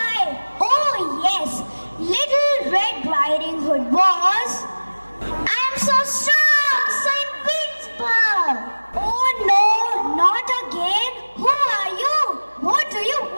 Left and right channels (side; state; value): both; inverted; correlation -1.00